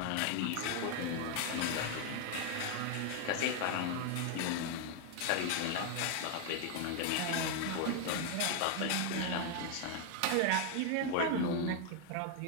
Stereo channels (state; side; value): different; both; correlation 0.00